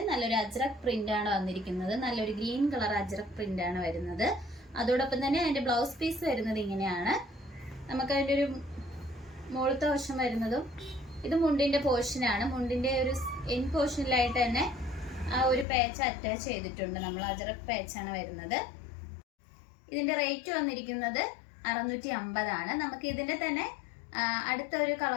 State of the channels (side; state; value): right; drops out; at 15.7 s